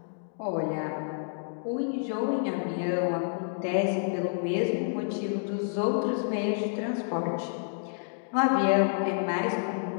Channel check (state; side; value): silent; right; digital silence